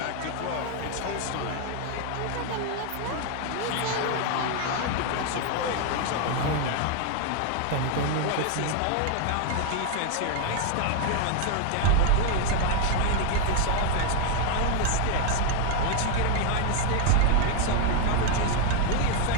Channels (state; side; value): different; both; correlation 0.00